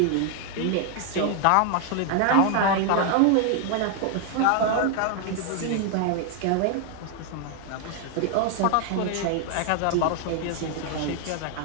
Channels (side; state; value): both; different; correlation 0.00